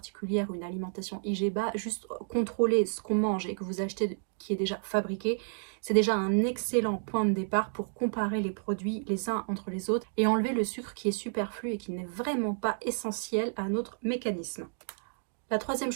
ou une alimentation IGBA, juste contrôler ce qu'on mange et que vous achetez qui est déjà fabriqué, c'est déjà un excellent point de départ pour comparer les produits les uns entre les autres et enlever le sucre qui est superflu et qui n'est vraiment pas essentiel à notre mécanisme. La troisième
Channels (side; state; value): left; silent; digital silence